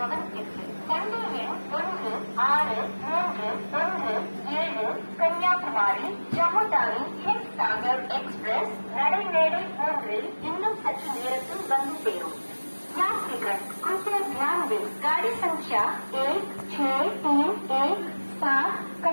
வண்டி எண் 16317 கன்னியாகுமரி ஜம்மு தாவி ஹிட் சாகர் எக்ஸ்பிரஸ் நடைமேடை 3 இன்னும் சற்று நேரத்தில் வந்து சேரும். यात्रीगण कृपया ध्यान दें, गाड़ी संख्या 16317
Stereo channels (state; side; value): inverted; both; correlation -1.00